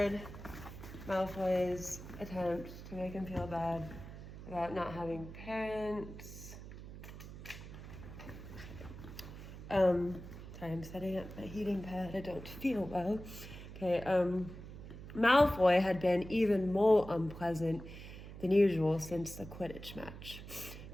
Malfoy's attempt to make him feel bad about not having parents. Sorry, I'm setting up my heating pad. I don't feel well. Okay, Malfoy had been even more unpleasant than usual since the Quidditch match.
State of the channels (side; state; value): right; noise; hum, 12 dB below the sound